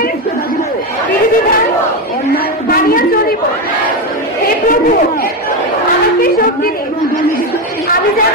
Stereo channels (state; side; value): normal; both; correlation 0.12